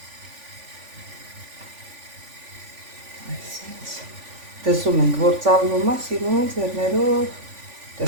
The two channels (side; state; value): left; late; 3.5 ms